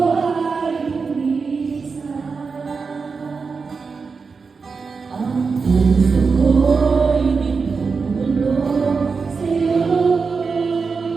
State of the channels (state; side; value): quieter; left; 4.9 dB